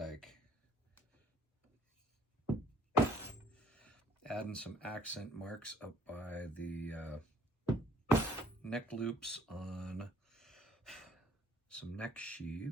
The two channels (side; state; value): both; normal; correlation 0.60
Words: Adding some accent marks up by the neck loops on some neck